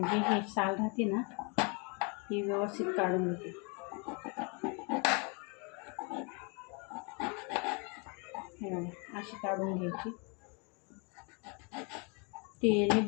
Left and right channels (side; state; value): right; quieter; 33.4 dB